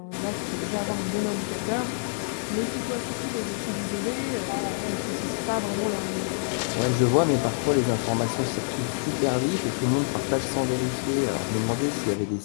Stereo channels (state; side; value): silent; right; 60 dB below the other